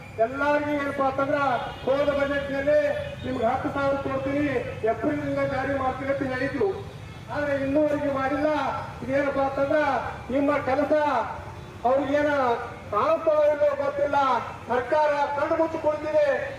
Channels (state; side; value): identical; both; correlation 1.00